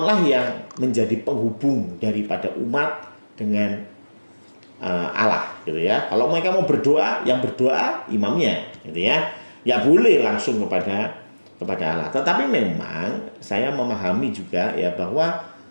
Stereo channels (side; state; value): both; inverted; correlation -1.00